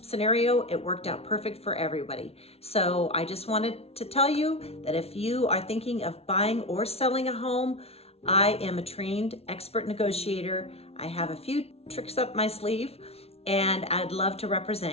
scenario, it worked out perfect for everybody. So I just wanted to tell you that if you are thinking of buying or selling a home, I am a trained expert negotiator. I have a few tricks up my sleeve, and I'd love to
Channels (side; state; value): right; late; 0.30 ms